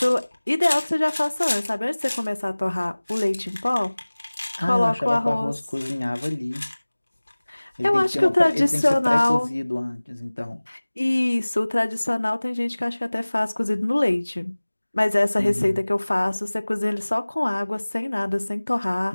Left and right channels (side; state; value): both; inverted; correlation -1.00